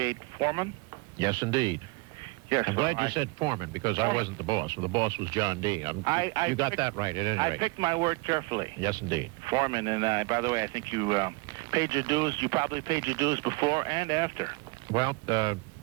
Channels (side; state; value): left; quieter; 26.5 dB